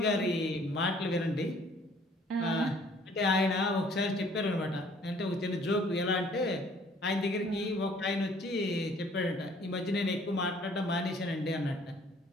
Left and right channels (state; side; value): normal; both; correlation 0.58